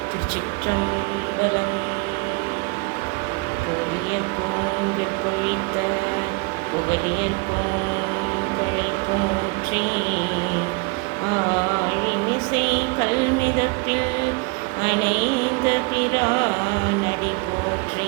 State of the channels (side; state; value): left; quieter; 28.1 dB